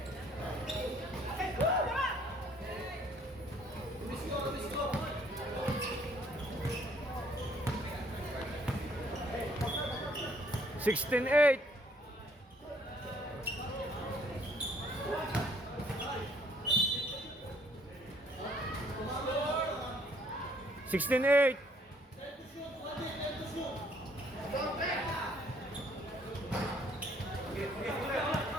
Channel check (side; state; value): both; normal; correlation 0.63